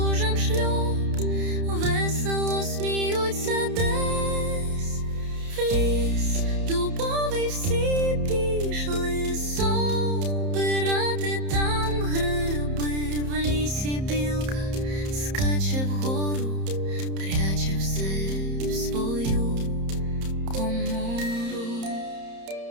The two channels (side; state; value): left; late; 30 ms